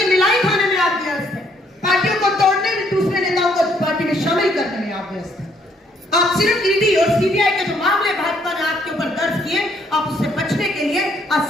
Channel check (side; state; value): both; normal; correlation 0.68